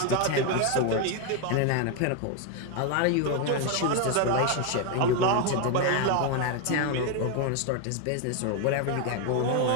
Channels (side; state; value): both; different; correlation 0.01